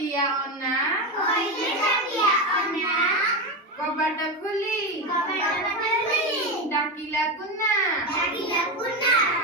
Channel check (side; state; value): both; normal; correlation 0.15